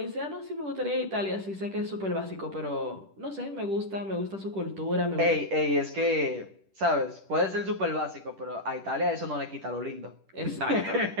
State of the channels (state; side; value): late; left; 10 ms